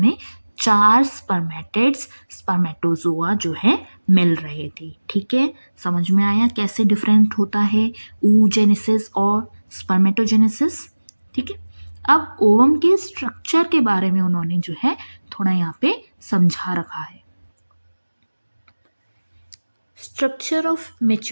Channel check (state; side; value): inverted; both; correlation -1.00